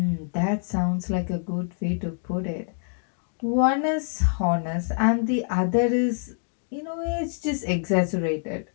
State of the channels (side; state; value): right; silent; digital silence